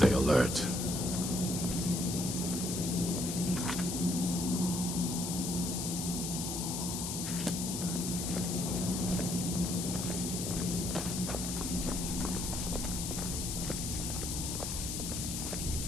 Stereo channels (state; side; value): noise; left; hiss, 3 dB below the sound